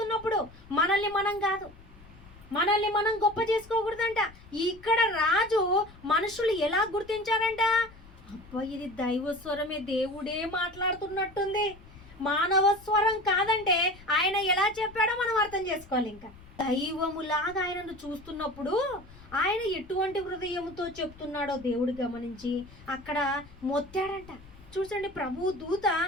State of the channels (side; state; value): left; noise; rumble, 21 dB below the sound